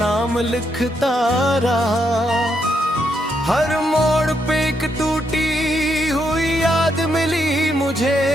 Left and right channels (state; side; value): normal; both; correlation 0.78